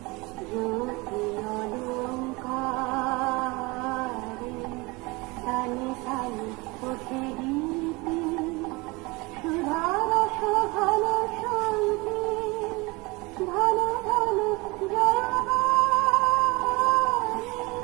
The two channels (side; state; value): left; quieter; 24.9 dB